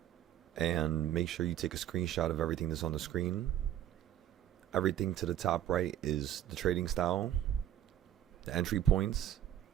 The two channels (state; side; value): quieter; left; 11.4 dB